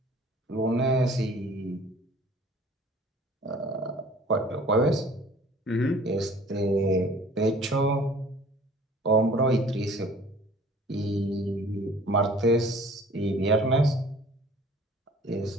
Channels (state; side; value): normal; both; correlation 0.50